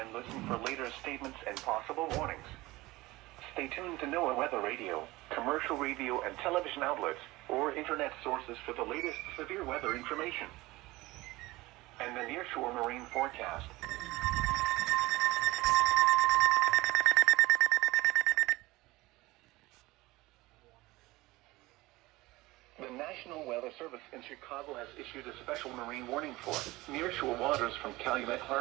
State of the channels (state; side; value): quieter; left; 19.9 dB